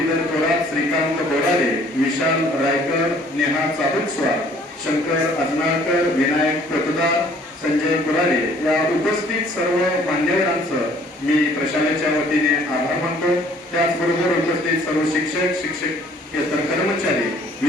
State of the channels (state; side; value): normal; both; correlation 0.57